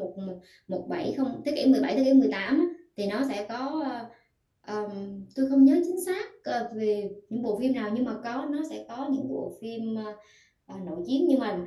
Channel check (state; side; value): identical; both; correlation 1.00